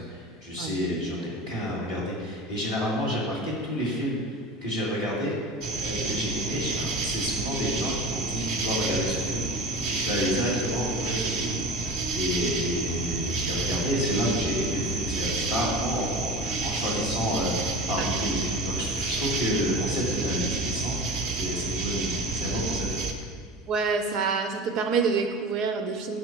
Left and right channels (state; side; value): normal; both; correlation 0.34